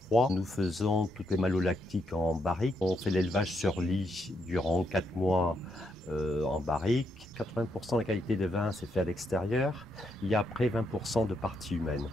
Nous faisons toutes les malolactiques en barrique. On fait l'élevage sur lit durant 4 mois en barrique. 80% de la qualité des vins, c'est fait à l'extérieur. Il y a après 20% de partie humaine.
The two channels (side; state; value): both; normal; correlation 0.78